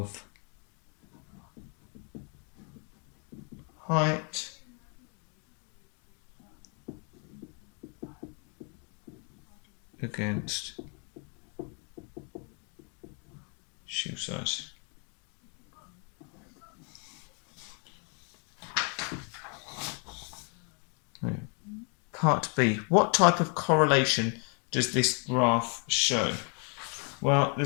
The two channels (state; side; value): quieter; right; 38.6 dB